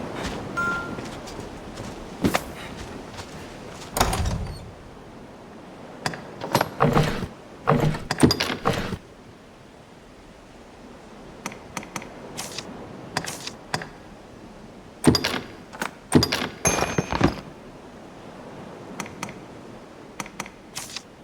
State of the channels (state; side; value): identical; both; correlation 1.00